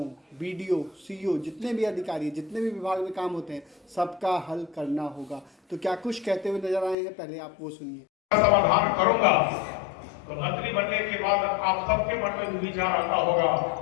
बीडीओ, सीईओ, जितने भी अधिकारी, जितने भी विभाग में काम होते हैं, सबका हल करना होगा। तो क्या कुछ कहते हुए नजर आए हैं, पहले आप वो सुनिए। समाधान करूंगा तो मंत्री बनने के बाद आप सबके मन में विचार आता होगा,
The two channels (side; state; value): right; drops out; at 7.0 s